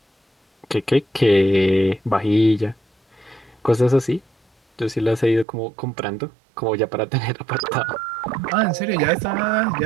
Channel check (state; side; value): drops out; left; at 5.5 s